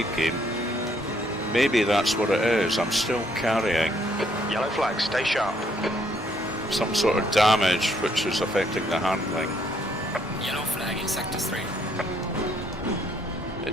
game, maybe that's what it is. I'm still carrying Yellow flag. Stay sharp. some sort of damage which is affecting the handling. Yellow flag in sector 3.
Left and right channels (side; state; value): both; normal; correlation 0.69